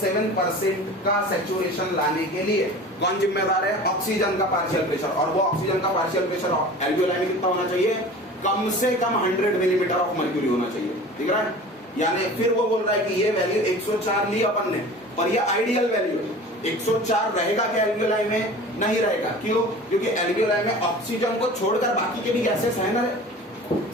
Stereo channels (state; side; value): normal; both; correlation 0.39